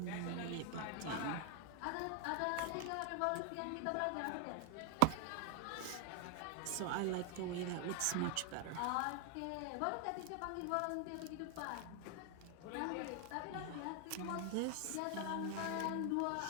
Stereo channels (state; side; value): different; both; correlation 0.00